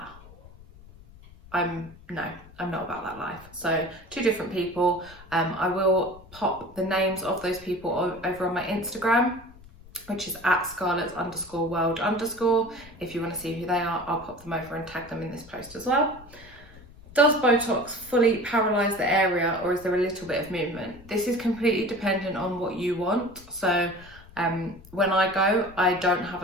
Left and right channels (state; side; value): noise; left; rumble, 21 dB below the sound